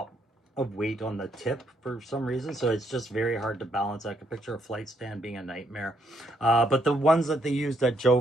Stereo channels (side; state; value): both; normal; correlation 0.73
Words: of weight on the tip for some reason, so it's just very hard to balance. I can picture a flight stand being a nightmare. But the ones that they used at Joe